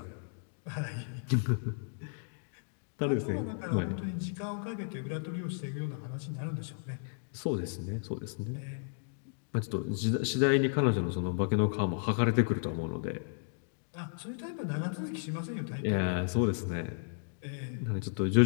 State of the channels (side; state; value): right; silent; digital silence